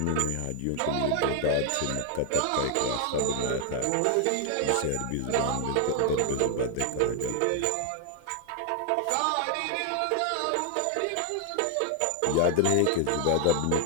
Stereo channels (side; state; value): both; different; correlation 0.00